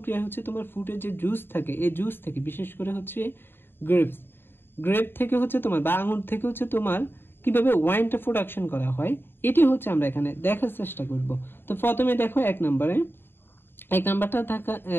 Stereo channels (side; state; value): right; late; 0.10 ms